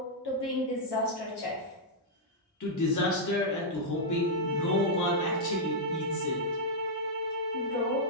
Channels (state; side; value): normal; both; correlation -0.06